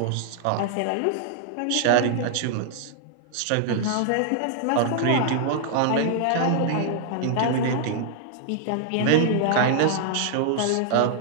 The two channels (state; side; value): different; both; correlation -0.01